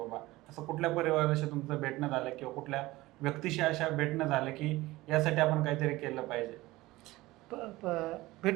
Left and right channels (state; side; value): quieter; left; 19.0 dB